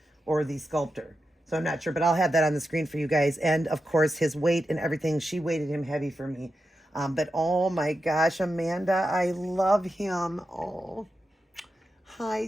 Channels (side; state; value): both; normal; correlation 0.89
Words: or the sculptor. So I'm not sure, but I'll have that on the screen for you guys. And of course, his weight and everything, she weighted him heavy for me. But oh my gosh, Amanda, I love him. Oh, hi,